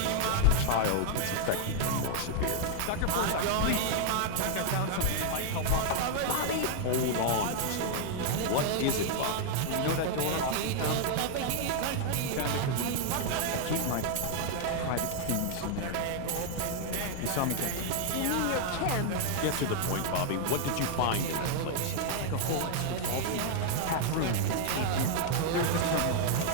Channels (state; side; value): different; both; correlation 0.00